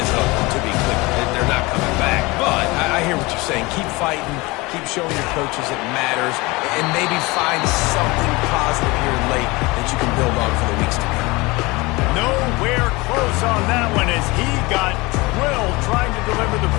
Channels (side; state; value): right; quieter; 23.5 dB